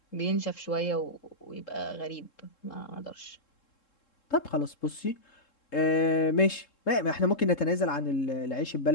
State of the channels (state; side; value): late; right; 3.7 ms